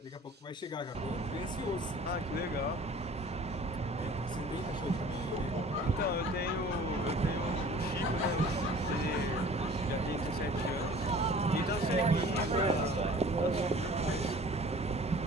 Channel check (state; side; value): normal; both; correlation 0.47